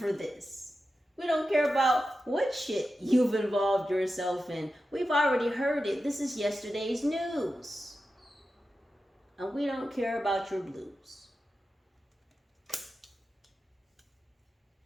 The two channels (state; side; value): normal; both; correlation 0.91